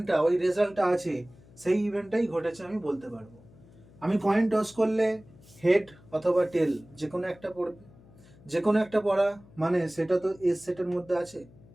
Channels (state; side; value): noise; left; hum, 24 dB below the sound